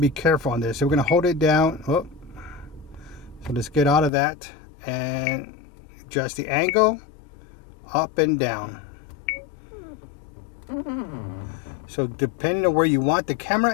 careful on this. So we're going to hold it down. Oh. So let's get out of that and adjust the angle up and down. So depending on where you want the camera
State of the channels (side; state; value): right; drops out; at 4.1 s